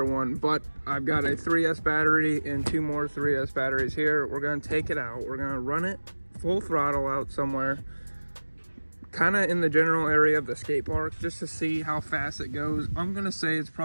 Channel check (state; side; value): inverted; both; correlation -1.00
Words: one, but I've got a 3S battery and 2 more 3S batteries here. We're gonna take it out. We're gonna run it full throttle out somewhere, kind of in the general area of the skate park, just to see how fast it goes. I'm gonna say it's